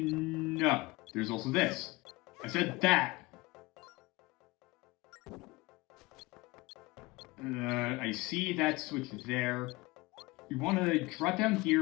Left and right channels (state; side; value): quieter; right; 22.4 dB